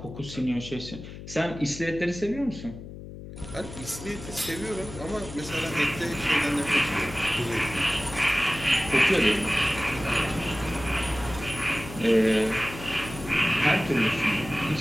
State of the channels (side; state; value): left; noise; hum, 13 dB below the sound